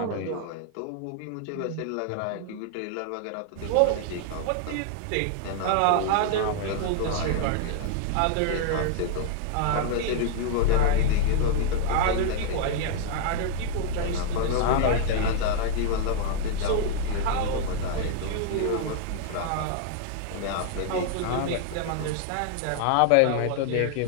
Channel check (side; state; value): both; different; correlation 0.00